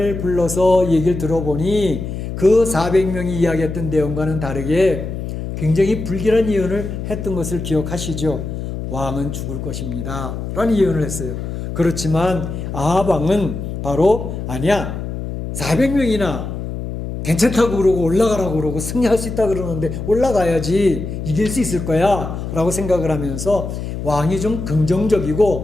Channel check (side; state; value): left; noise; hum, 6 dB below the sound